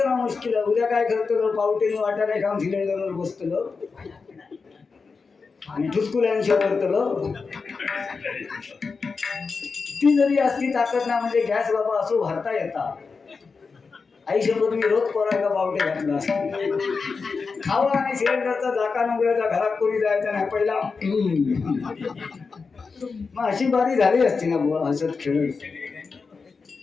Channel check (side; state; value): right; quieter; 4.8 dB